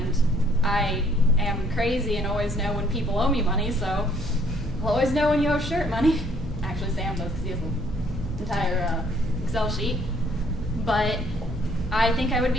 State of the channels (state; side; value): normal; both; correlation 0.63